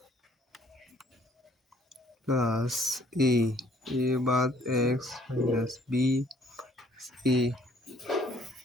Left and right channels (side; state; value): both; normal; correlation 0.61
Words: প্লাস এ, এ বাদ x minus B A